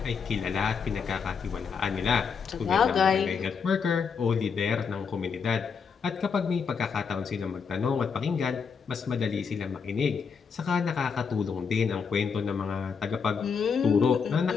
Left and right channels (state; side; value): quieter; right; 6.0 dB